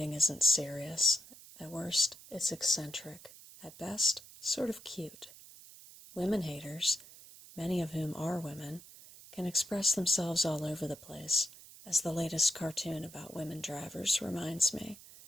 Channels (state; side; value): noise; right; hiss, 19 dB below the sound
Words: isn't serious. At worst, it's eccentric. At best, sort of cute. Women-haters, many of whom are women, can express themselves all over the place, as the latest cartoon about women drivers reminds me,